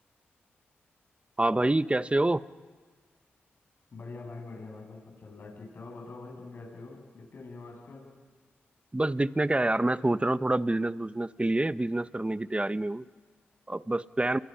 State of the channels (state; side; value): normal; both; correlation 0.96